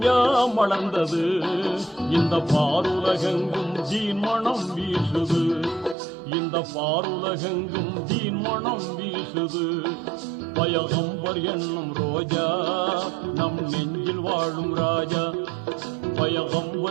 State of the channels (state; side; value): drops out; left; at 6.0 s